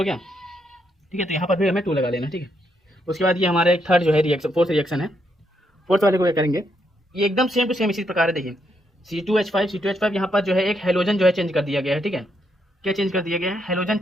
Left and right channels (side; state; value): both; normal; correlation 0.77